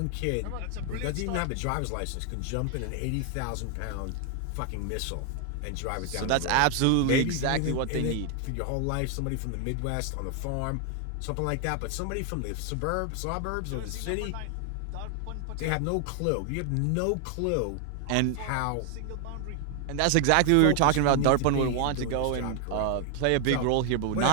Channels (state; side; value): different; both; correlation 0.00